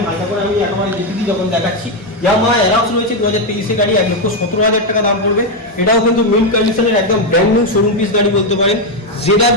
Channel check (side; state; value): both; normal; correlation 0.05